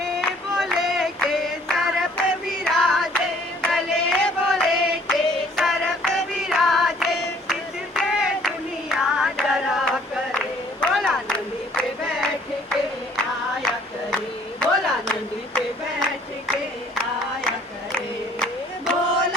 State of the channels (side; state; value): both; normal; correlation 0.58